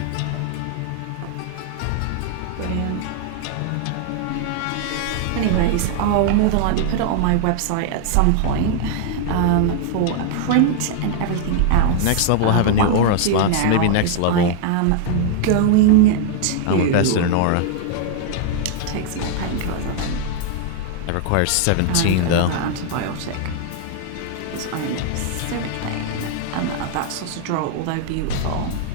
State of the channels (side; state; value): both; different; correlation 0.00